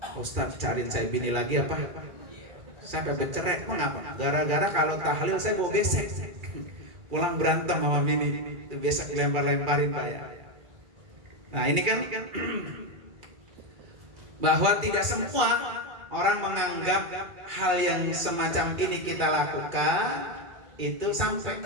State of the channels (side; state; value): left; late; 2.3 ms